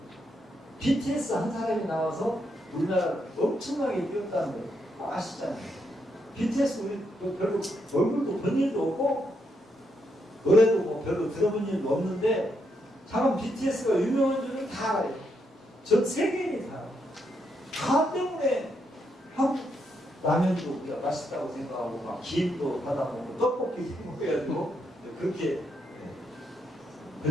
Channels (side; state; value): both; normal; correlation 0.79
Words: BTS 한 사람이 나와서 우리나라 엄청나게 뛰었다는 거 아시잖아요. BTS 우리 별로 얼굴도 본 일도 없고 노래도 뭐 별로 들어본 일도 없는데 참 BTS가 유명한 줄은 다 알아요. 전 세계인이 다 알아요. 다 때문에 한국 라면도 우리가 맛있다고 생각하고 막 김도 받아먹고 떡볶이 먹어가지고 그렇게